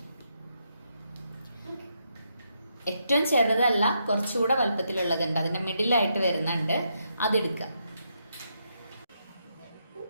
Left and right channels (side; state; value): both; inverted; correlation -0.80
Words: ഏറ്റവും ചെറുതല്ല, കുറച്ചുകൂടെ വലുപ്പത്തിലുള്ളതുണ്ട്, അതിൻ്റെ മിഡിലായിട്ട് വരുന്നുണ്ട്, അതെടുക്കുക.